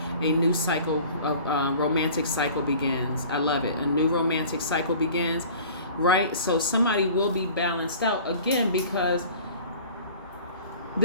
A new cycle of romantic cycle begins. I love it. A new romantic cycle begins. Right? So somebody will be balanced out again because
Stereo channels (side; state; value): both; inverted; correlation -0.45